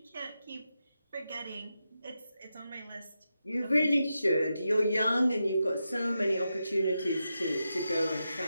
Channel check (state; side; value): inverted; both; correlation -0.88